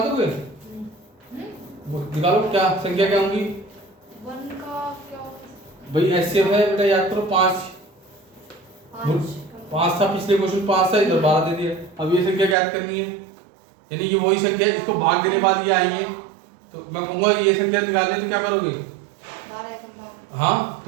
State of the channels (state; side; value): drops out; left; at 12.6 s